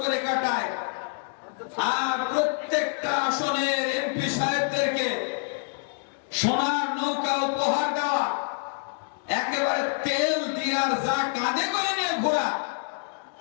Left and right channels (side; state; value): right; silent; 59 dB below the other